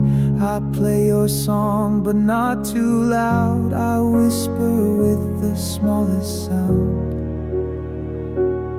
I play your song, but not too loud. I whisper with the smallest sound.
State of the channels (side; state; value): both; identical; correlation 1.00